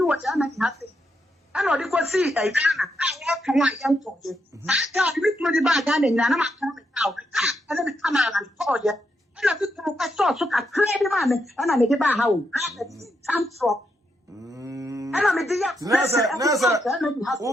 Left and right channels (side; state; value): both; normal; correlation 0.81